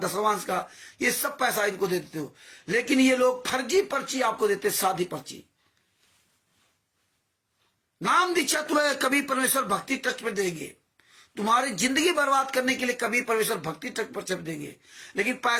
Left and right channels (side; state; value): both; identical; correlation 1.00